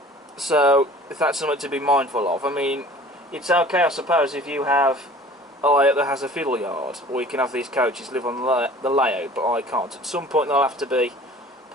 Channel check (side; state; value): both; normal; correlation 0.46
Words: So if that's something to be mindful of, I mean, it's okay I suppose if you have a layout that has a fiddle yard, or you can have these coaches live on the layout, but I can't. At some point they'll have to be